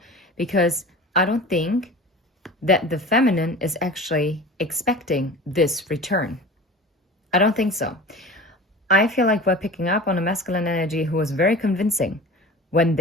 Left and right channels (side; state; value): both; normal; correlation 0.37